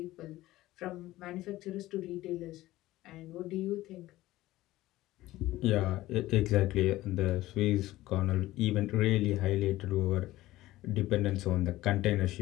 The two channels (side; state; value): right; quieter; 16.7 dB